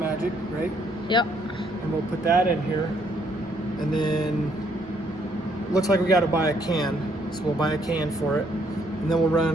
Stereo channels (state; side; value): normal; both; correlation 0.69